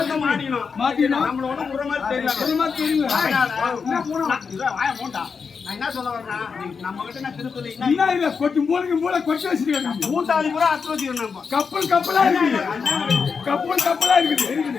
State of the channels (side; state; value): right; quieter; 5.6 dB